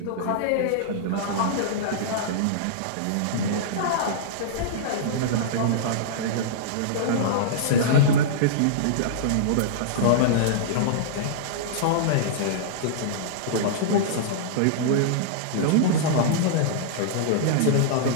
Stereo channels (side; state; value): both; different; correlation -0.02